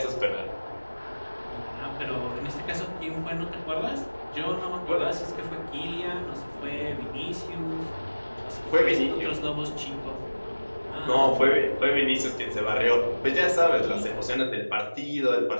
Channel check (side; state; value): both; inverted; correlation -1.00